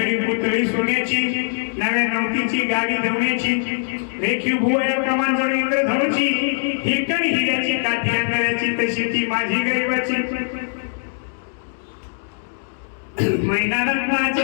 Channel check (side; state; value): right; silent; digital silence